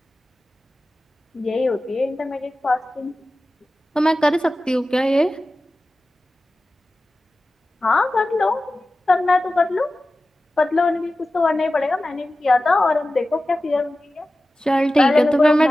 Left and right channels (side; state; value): both; normal; correlation 0.95